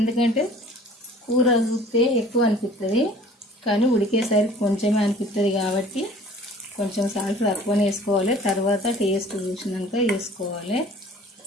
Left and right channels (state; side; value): normal; both; correlation 0.49